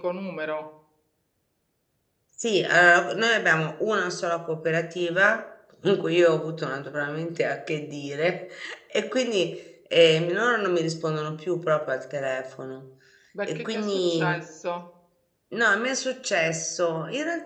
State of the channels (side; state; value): both; identical; correlation 1.00